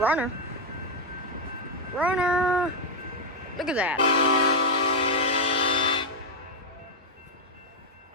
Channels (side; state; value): both; normal; correlation 0.01